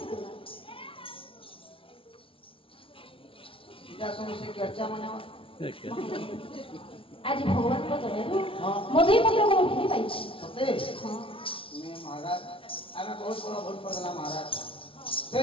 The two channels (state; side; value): late; right; 0.26 ms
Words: এটা সমস্যা চর্চা মানে আজ ভগবানଙ୍କ ଦୟାରୁ ହଁ ମଧୁଇ ପତ୍ରକୁ ମୁଁ ଭେଟି ପାଇଛି ସତେ ହଁ मैं महाराज आमे बहुत बड़ा भूल करला महाराज से